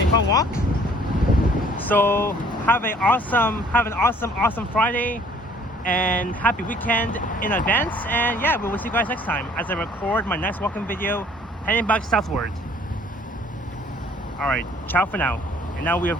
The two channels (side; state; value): both; normal; correlation 0.57